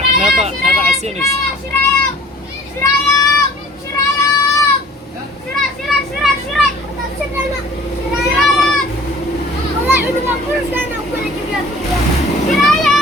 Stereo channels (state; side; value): normal; both; correlation 0.50